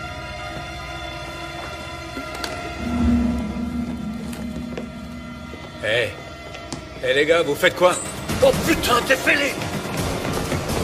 Hé les gars, vous faites quoi? Oh putain, t'es fêlé!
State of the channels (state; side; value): identical; both; correlation 1.00